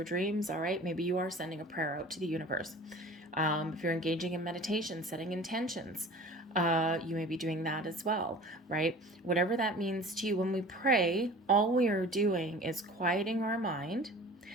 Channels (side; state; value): both; normal; correlation 0.42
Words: dreams, all right? Maybe you are sending a prayer out to the universe. If you're engaging in meditation, setting intentions, you may be doing that as well, right? Whatever that means to you, when we pray, all we are doing is quieting our mind